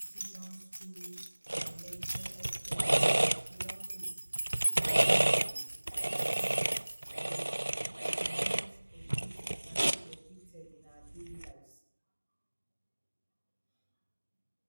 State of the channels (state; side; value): inverted; both; correlation -1.00